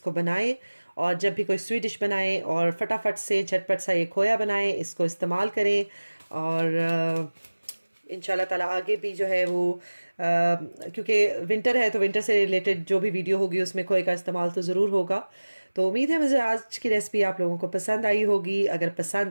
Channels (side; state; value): both; inverted; correlation -1.00